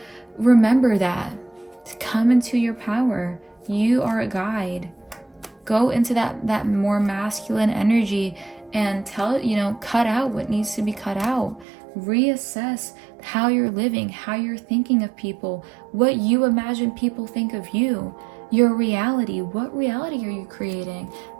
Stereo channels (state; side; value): drops out; left; at 11.7 s